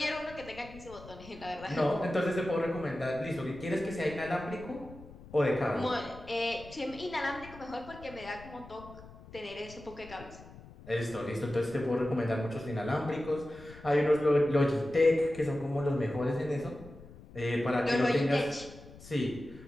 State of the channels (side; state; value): left; noise; rumble, 18 dB below the sound